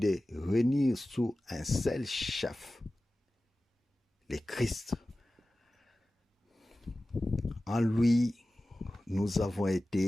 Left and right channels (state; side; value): normal; both; correlation 0.96